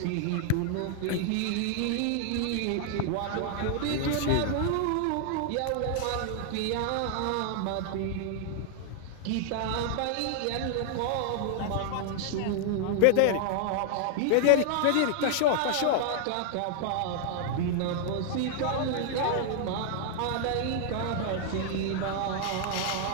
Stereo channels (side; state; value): both; different; correlation 0.00